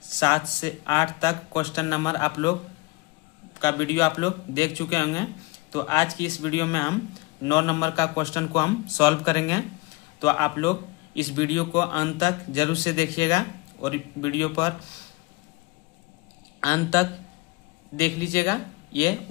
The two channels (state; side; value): quieter; right; 23.5 dB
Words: 7 से 8 तक क्वेश्चन नंबर आप लोग का वीडियो आप लोग देख चुके होंगे। तो आज की इस वीडियो में हम 9 नंबर का क्वेश्चन को हम सॉल्व करेंगे। तो आप लोग इस वीडियो को अंत तक जरूर से देखिएगा और वीडियो पर अंत तक देख लीजिएगा ये।